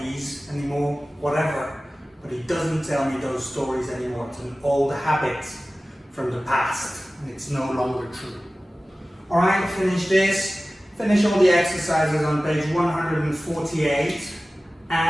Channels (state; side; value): normal; both; correlation 0.96